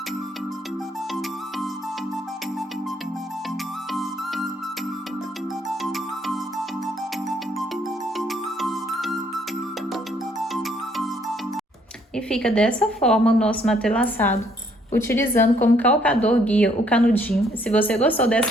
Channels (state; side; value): normal; both; correlation 0.67